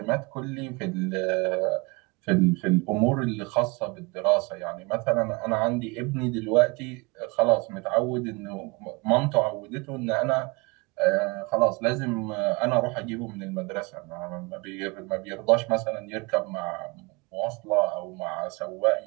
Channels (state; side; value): quieter; left; 27.2 dB